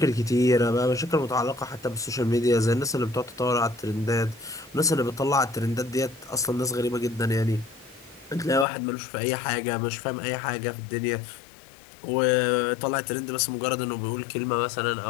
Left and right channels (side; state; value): right; drops out; at 8.7 s